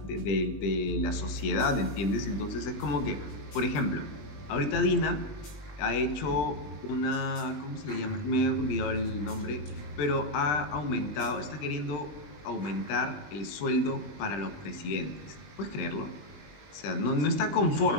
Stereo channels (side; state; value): right; late; 20 ms